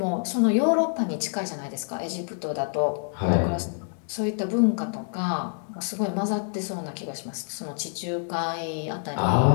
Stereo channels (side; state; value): right; silent; 60 dB below the other